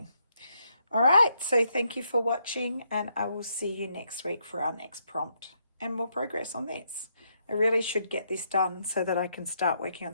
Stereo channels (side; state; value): both; inverted; correlation -0.76